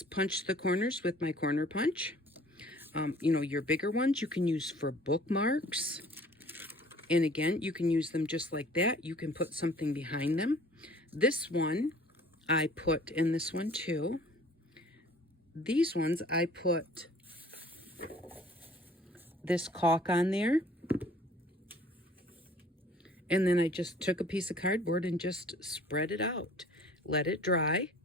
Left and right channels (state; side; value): normal; both; correlation 0.52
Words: punched the corners with my corner punch. You know, your bigger ones you can use for bookmarks. And again, you can use them just like that. You can put something behind them. This one I put in this one too. These ones I put this caulk on there. And then I just took a piece of cardboard and just spread it out. Let it dry.